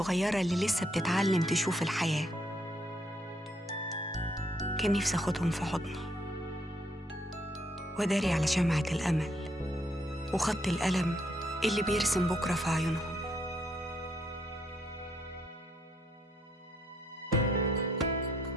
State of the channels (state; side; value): normal; both; correlation 0.72